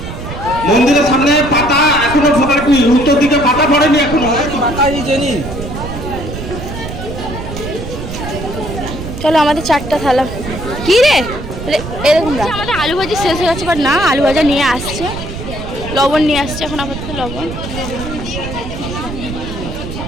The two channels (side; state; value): right; noise; rumble, 8 dB below the sound